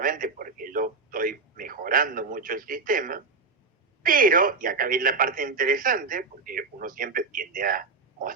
porque yo estoy mejorando mucho el sistema, pero, y acá viene la parte interesante, porque uno siempre tiende a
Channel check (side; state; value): left; quieter; 4.3 dB